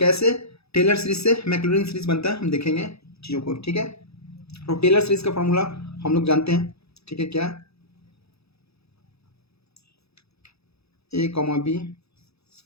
टेलर सीरीज से मैक्लॉरिन सीरीज बनता है हम देखेंगे चीज़ों को, ठीक है। तो टेलर सीरीज का फॉर्मूला हम लोग जानते हैं, ठीक है, क्या, a, b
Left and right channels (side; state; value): right; late; 0.78 ms